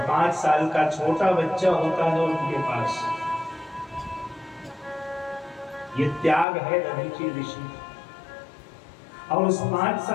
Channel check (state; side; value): drops out; right; at 6.5 s